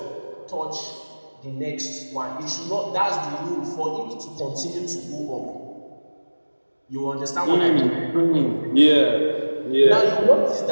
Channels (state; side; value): inverted; both; correlation -1.00